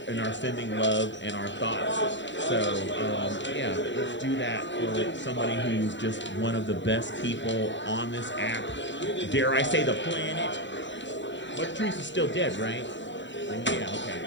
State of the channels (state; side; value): late; right; 0.53 ms